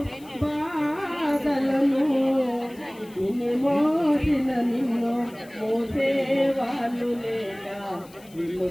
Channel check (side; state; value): left; noise; hiss, 25 dB below the sound